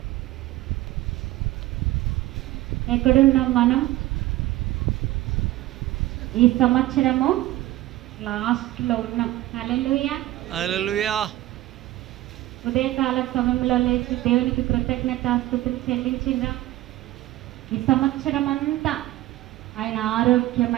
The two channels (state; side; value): quieter; left; 16.1 dB